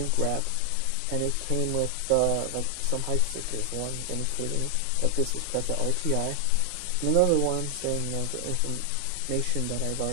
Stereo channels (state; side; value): different; both; correlation 0.00